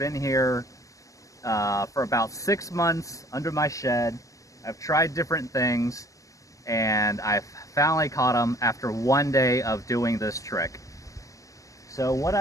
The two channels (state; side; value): late; right; 0.16 ms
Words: here for about 6 months under my shed. I've tried different things and I've finally caught him after one day of doing this trick. So what